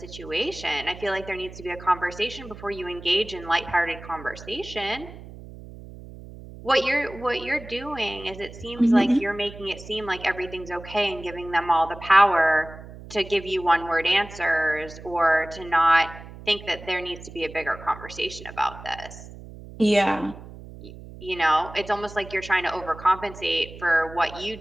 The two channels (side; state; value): right; noise; hum, 15 dB below the sound